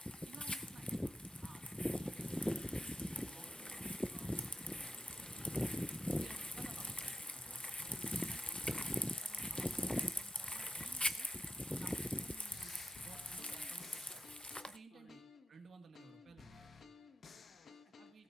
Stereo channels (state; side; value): normal; both; correlation 0.87